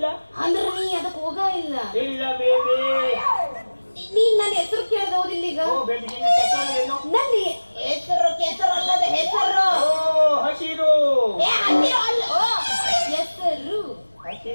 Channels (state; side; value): inverted; both; correlation -1.00